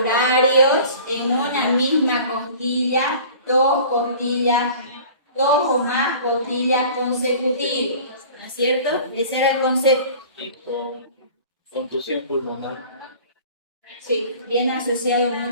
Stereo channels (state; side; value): inverted; both; correlation -0.44